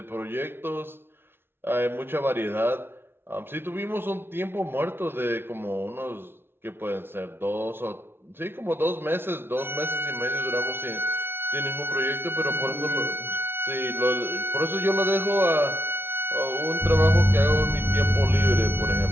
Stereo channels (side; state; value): left; late; 0.11 ms